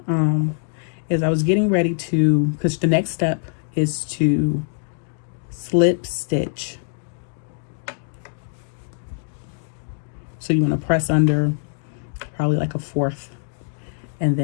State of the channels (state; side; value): silent; right; digital silence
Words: is I was getting ready to, because the next step is to slip stitch. So you want to press under probably like a fourth, and